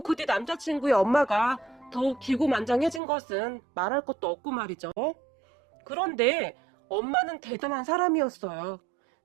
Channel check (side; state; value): left; drops out; at 3.0 s